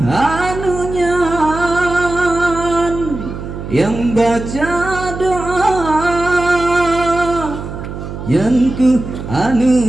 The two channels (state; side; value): noise; right; hum, 9 dB below the sound